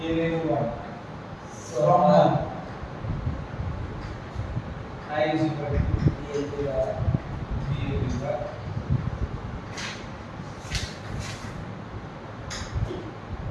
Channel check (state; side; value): identical; both; correlation 1.00